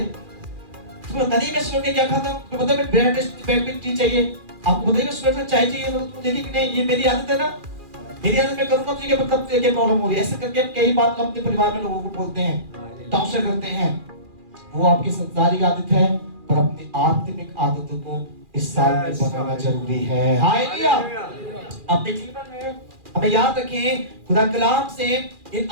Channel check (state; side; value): late; left; 2.4 ms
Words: तुम्हें पता नहीं मैं सुबह के क्या खाता हूँ? तुम्हें पता है मैं ब्रेड में टी चाहिए, आपको पता है मैं सुबह चाय चाहिए, तो तुम देखिए कि नहीं ये मेरी आदत है ना, मेरी आदत मैं करूंगा तो ये मतलब क्या प्रॉब्लम हो रही है। ऐसे करके कई बार अपने परिवार में लोगों को बोलते हैं, टॉर्चर करते हैं। वो आपकी संसारिक आदत है, पर अपनी आत्मिक आदतों को इस साल में बनाना जरूरी है। हालेलुया। अपने जीवन में हमें याद रखें, खुदा कलाम से इन